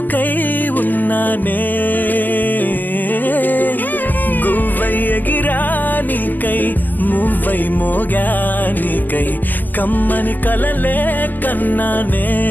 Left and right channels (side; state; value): right; late; 0.085 ms